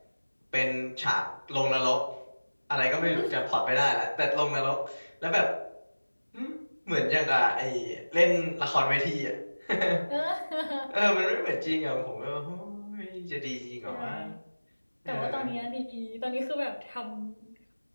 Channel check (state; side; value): inverted; both; correlation -1.00